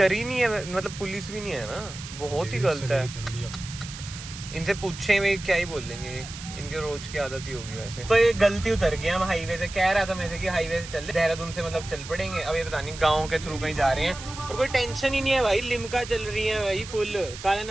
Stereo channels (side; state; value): right; noise; hiss, 12 dB below the sound